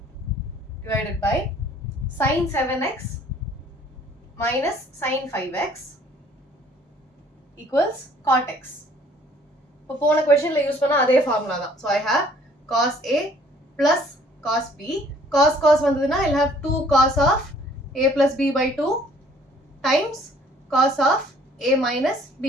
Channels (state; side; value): normal; both; correlation 0.58